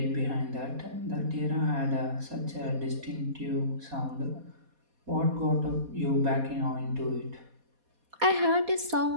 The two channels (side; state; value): left; late; 4.2 ms